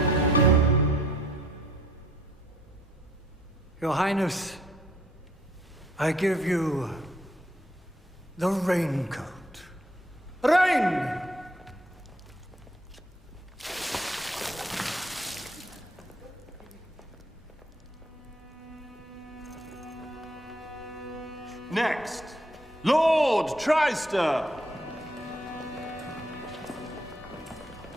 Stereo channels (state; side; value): normal; both; correlation 0.65